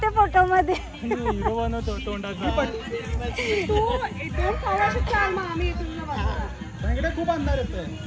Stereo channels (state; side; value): identical; both; correlation 1.00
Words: फोटो मध्ये. खूप अंधार येतोय.